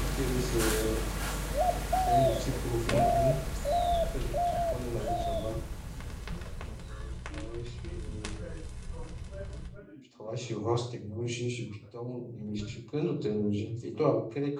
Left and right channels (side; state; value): both; identical; correlation 1.00